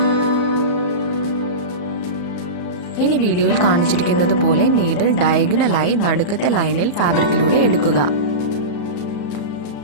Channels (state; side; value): late; right; 34 ms